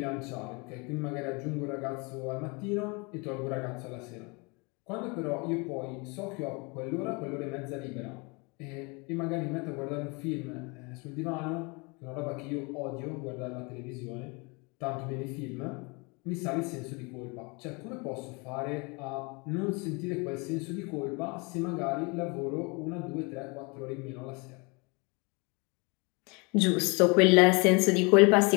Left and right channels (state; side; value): quieter; right; 29.5 dB